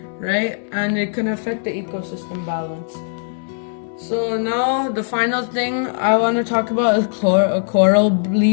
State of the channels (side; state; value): right; silent; 66 dB below the other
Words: right? And it can affect the ecosystem balance. So now the final thing I want to talk about is coral